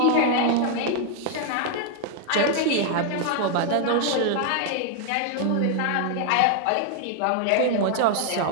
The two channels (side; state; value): both; different; correlation 0.00